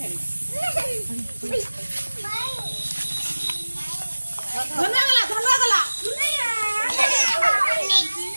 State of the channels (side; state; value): both; inverted; correlation -1.00